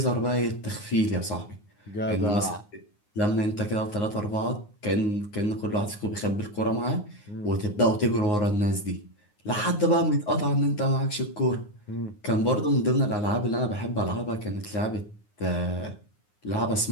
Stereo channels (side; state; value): right; late; 9.6 ms